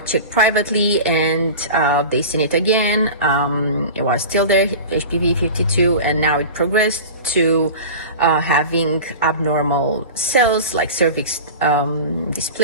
check privately, and they seen it again. It was still there, HPV-52, and now it progressed to having abnormal cells like cervix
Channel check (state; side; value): inverted; both; correlation -0.33